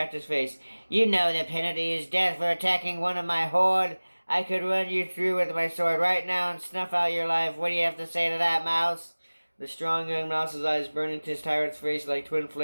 face. "You know the penalty is death for attacking one of my horde. I could run you through with my sword right now and snuff out your life. What do you have to say to that, mouse?" The strong young mouse's eyes burned into his tyrant's face like twin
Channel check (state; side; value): inverted; both; correlation -1.00